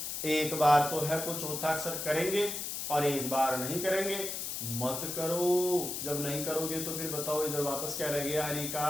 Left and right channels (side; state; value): left; noise; hiss, 4 dB below the sound